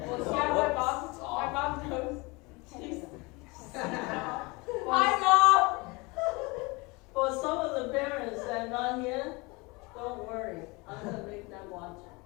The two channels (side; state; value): right; quieter; 26.0 dB